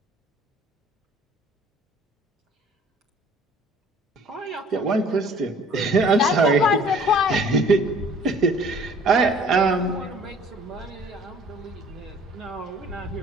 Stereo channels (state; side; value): normal; both; correlation 0.52